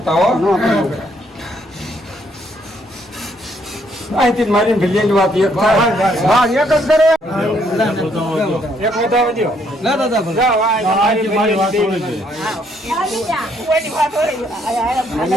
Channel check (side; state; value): both; normal; correlation 0.70